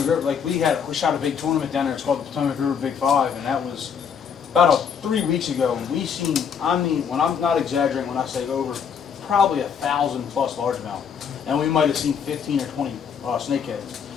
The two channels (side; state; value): right; quieter; 7.1 dB